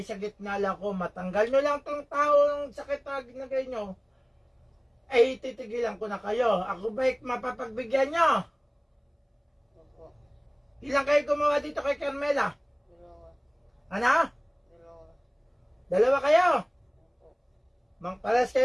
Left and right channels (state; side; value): identical; both; correlation 1.00